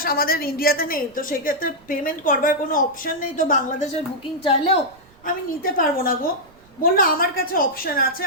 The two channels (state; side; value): noise; right; rumble, 29 dB below the sound